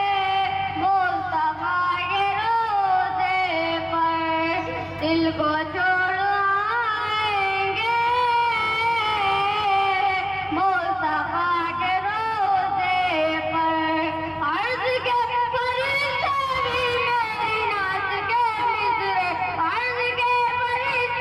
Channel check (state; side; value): identical; both; correlation 1.00